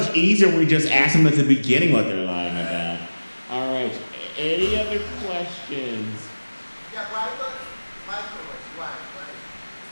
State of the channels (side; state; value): both; inverted; correlation -1.00